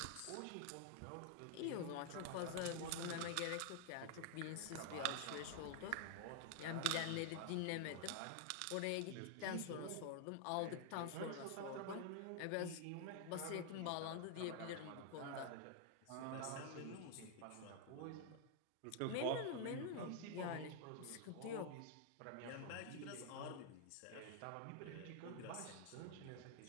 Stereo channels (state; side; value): different; both; correlation 0.00